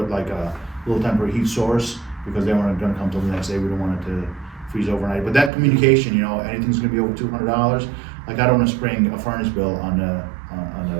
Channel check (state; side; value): drops out; left; at 5.5 s